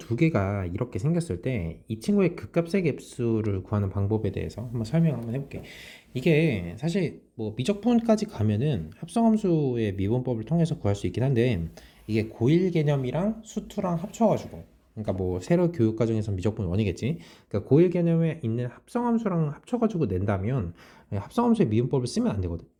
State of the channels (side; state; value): both; identical; correlation 1.00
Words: 개가 이렇게 생겼을 때 이 친구의 극값의 갭수를 구하는 방법에 대해서 한번 설명을 한번 해볼게. 이게 사실 뭐 미적분까지 가면은 합성함수의 미분법을 통해서 구할 수 있긴 한데, 이게 고일 개념이랑 수투랑 합쳐가지고, 그러니까 뭐 세로 교육 과정에서 미적분 원이겠지. 그러니까 고일 개념에 있는 합성함수랑 합쳐가지고 낸다면 합성함수의 미분법을 쓰면 안 되거든.